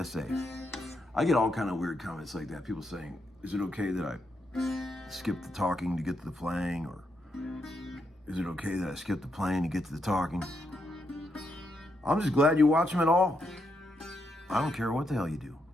say. I get all kind of weird comments like that. People saying, is it okay that I skip the talking to get to the playing? Or is it okay that I skip the playing to get to the talking? I'm just glad you watch them at all. I don't care what the hell you do.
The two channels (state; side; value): normal; both; correlation 0.81